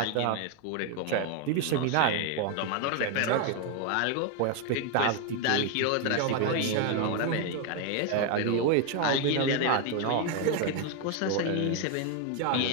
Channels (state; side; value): different; both; correlation 0.01